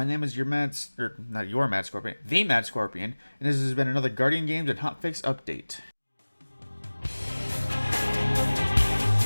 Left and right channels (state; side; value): inverted; both; correlation -1.00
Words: name is not your Mad Scorpion, the Mad Scorpion, and this has been another Guardian Games and Hotfix update.